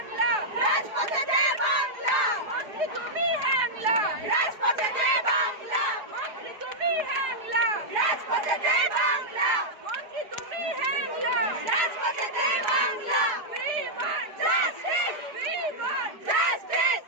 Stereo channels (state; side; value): late; left; 4.8 ms